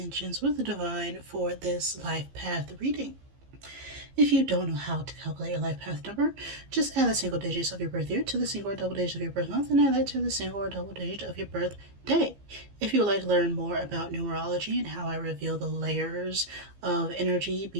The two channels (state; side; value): late; left; 15 ms